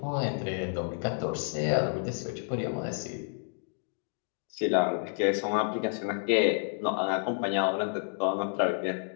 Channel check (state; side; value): silent; right; 58 dB below the other